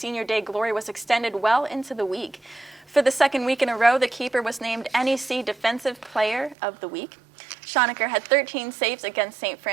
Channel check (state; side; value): drops out; left; at 6.6 s